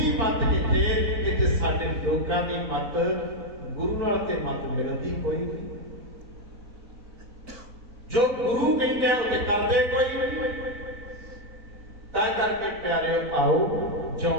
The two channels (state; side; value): late; left; 4.0 ms